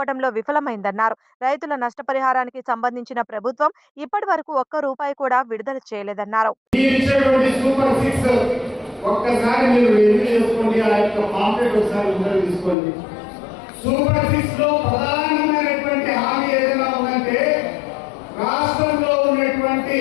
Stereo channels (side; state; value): right; drops out; at 12.8 s